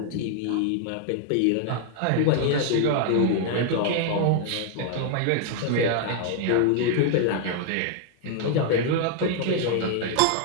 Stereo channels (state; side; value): different; both; correlation 0.00